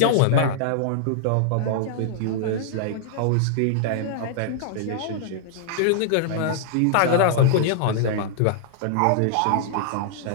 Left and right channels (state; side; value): different; both; correlation -0.01